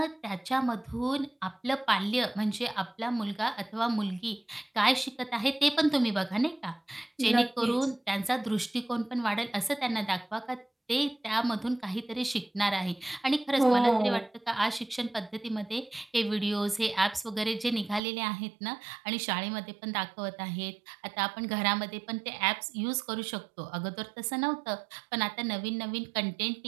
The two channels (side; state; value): left; drops out; at 18.0 s